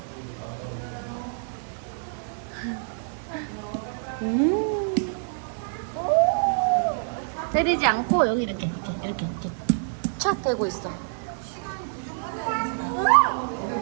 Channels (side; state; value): left; silent; digital silence